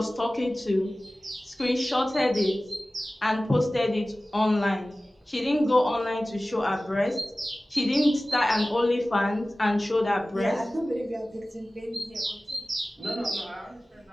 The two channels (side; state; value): both; normal; correlation 0.97